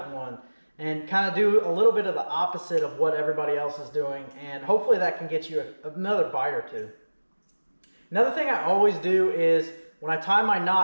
one. and kind of do a little bit of the opposite of what everybody else is doing, and hopefully that can get you another bite or two. Another thing I always do is when I tie my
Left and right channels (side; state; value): both; inverted; correlation -1.00